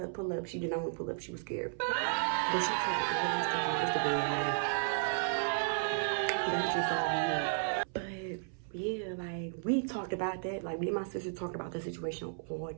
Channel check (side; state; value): left; silent; 55 dB below the other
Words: pull up. She did not want to pull up. She was scared. But she talked all that stuff on Instagram. Like, that's just all weird. But yeah, like, we talked about that. Like, me and my sister talked about the situation all